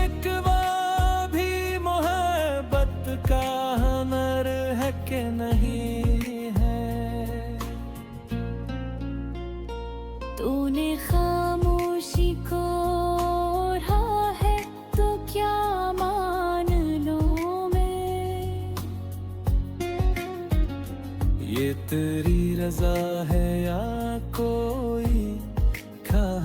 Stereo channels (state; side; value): identical; both; correlation 1.00